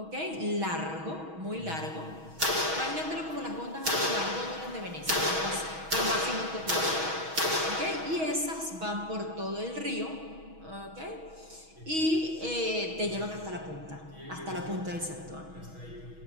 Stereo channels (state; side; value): late; left; 6.2 ms